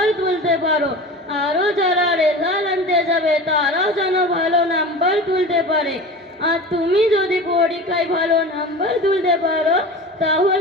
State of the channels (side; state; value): both; normal; correlation 0.34